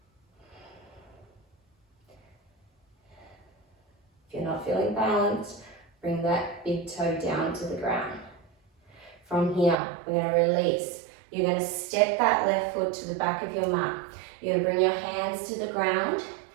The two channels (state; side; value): drops out; left; at 9.8 s